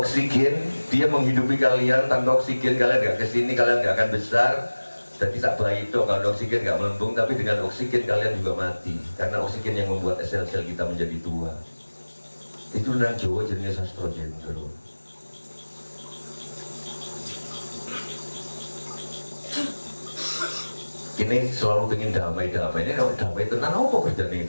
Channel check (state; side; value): inverted; both; correlation -1.00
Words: dia menghidupi kalian. Tanpa oksigen kalian gak kesini, kalian gak akan besar. Jadi tak baik itu kalau oksigen gak melembung, tapi dengan oksigen kalian juga mati. Karena oksigen yang membuat sel-sel kita menjadi tua. Itu nang Jawa jenis sastra jendro. Ini selalu ingin damai-damai. Ini kalau damai tenang, apa kerjaan ini